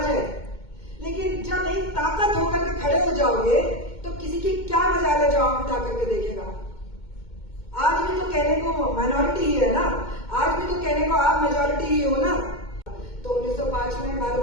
है, लेकिन जब एक ताकत होकर के खड़े हो जाओगे तो किसी की क्या मजाल है जो आंख उठा करके देखेगा। आज भी तो कहने को माइनॉरिटी ही है ना, आज भी तो कहने को आप मेजॉरिटी ही हो ना। तो 1905 में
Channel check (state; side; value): late; right; 2.2 ms